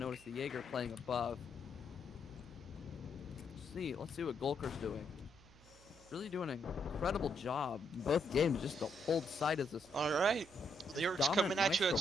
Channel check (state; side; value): noise; right; hum, 24 dB below the sound